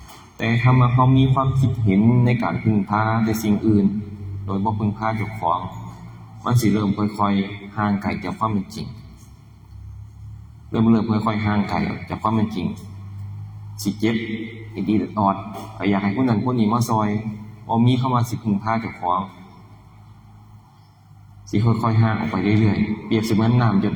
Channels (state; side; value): identical; both; correlation 1.00